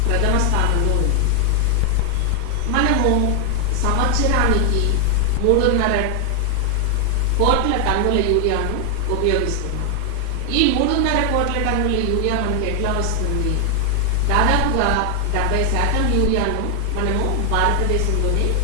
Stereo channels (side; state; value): both; different; correlation 0.00